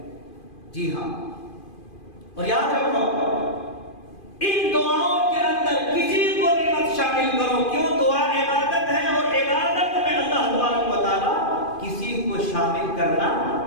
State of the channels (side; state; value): right; late; 2.5 ms